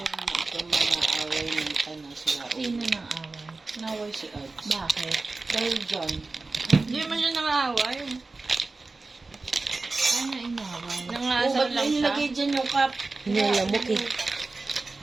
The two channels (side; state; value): left; quieter; 3.6 dB